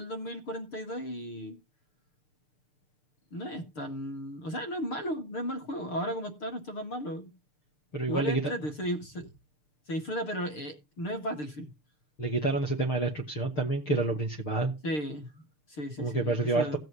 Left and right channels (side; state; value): right; late; 6.7 ms